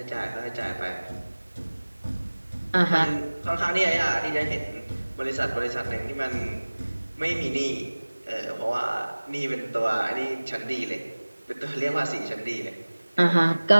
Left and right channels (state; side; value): inverted; both; correlation -1.00